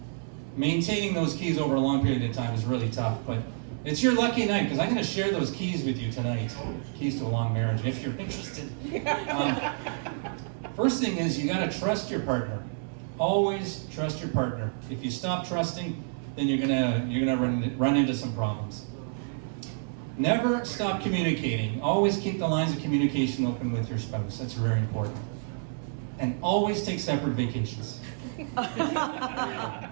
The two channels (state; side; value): silent; left; 59 dB below the other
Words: maintaining those keys over a long period of time is really tough. But it's your lucky night, because I'm gonna share those keys with you tonight. Keys to a long marriage, if you're interested. First thing is, you gotta trust your partner. Always trust your partner. If you stop trusting, then you're gonna run into some problems. Never stop communicating. Always keep the lines of communication open with your spouse. That's very important. And always take separate vacations.